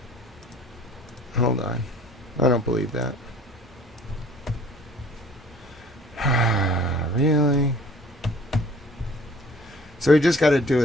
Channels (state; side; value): normal; both; correlation 0.51